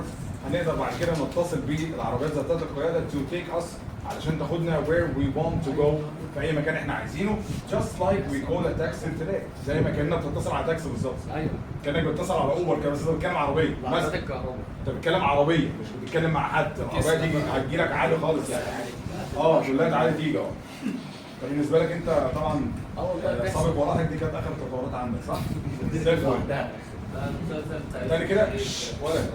هنقدر بعد كده نتصل بالعربيات ذاتيه القياده to take us علشان تاخدنا where we want to go في اي مكان احنا عايزينه. just like we call a taxi today. زي ما كاننا بتتصل على تاكسي بالظبط. ايوه كانك بتتصل على اوبر كده، بس انت بتتكلم عربيه عربيات الكهرباء. انت بتتكلم عربيه مش بتتكلم مع حد. العربيه دي هتجيلك عادي خالص يعني. تقول لها تعالى تيجي اهو. فبالنسبه لك انت طبعا سابق وراحك دي كانت اخر التطورات عندك صح؟ زي الفل. تاني كده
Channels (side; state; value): both; identical; correlation 1.00